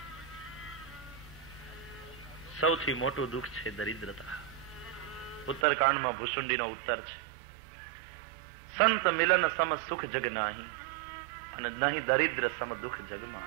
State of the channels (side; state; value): left; drops out; at 5.7 s